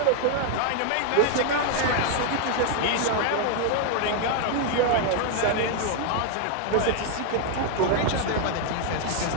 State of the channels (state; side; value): different; both; correlation 0.00